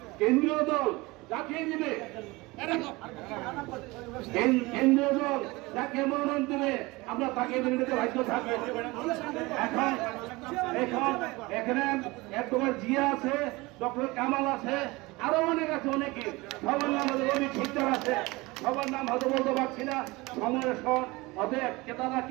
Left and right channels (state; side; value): quieter; left; 22.6 dB